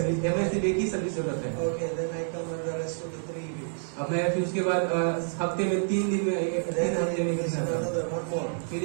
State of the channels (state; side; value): silent; left; digital silence